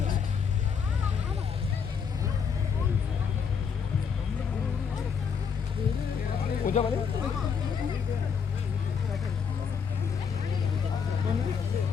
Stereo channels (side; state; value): right; quieter; 6.5 dB